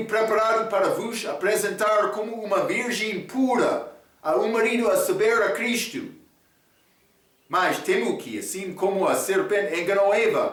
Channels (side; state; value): both; identical; correlation 1.00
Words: preparado para vos apresentar como uma virgem pura a um marido, a saber, a Cristo. Mas temo que, assim como a serpente enganou